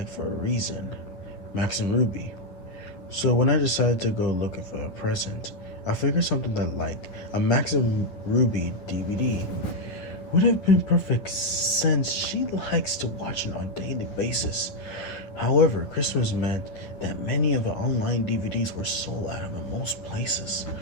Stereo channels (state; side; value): late; right; 10 ms